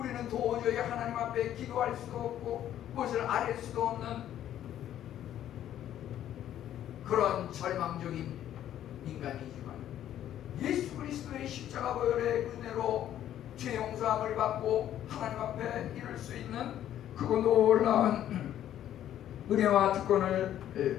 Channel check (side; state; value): right; quieter; 11.4 dB